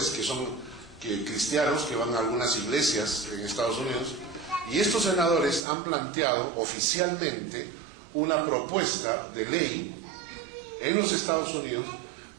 que son cristianos que van a algunas iglesias en Estados Unidos, y estos senadores han planteado oficialmente una propuesta de ley en los Estados Unidos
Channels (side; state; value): left; drops out; at 5.6 s